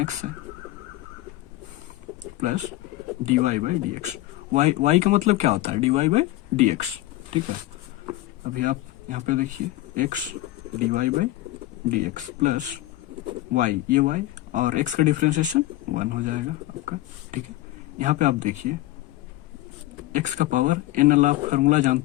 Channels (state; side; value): quieter; right; 16.6 dB